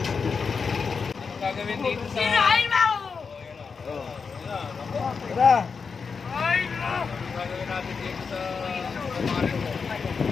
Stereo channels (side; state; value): right; quieter; 5.4 dB